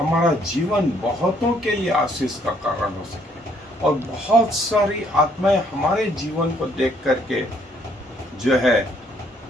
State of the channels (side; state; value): both; normal; correlation 0.66